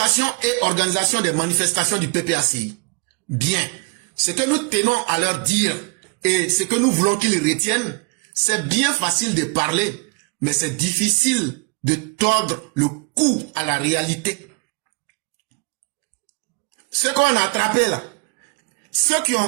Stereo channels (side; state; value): left; quieter; 33.5 dB